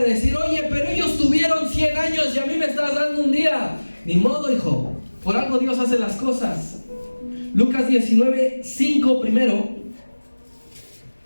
decir, oye, pero ellos tuvieron 100 años y a mí me estás dando un día. Ni modo, hijo, por algo Dios hace las cosas. Lucas 19:5 primero.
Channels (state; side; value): inverted; both; correlation -1.00